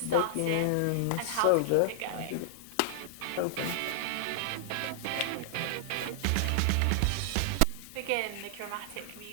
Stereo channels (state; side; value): different; both; correlation -0.01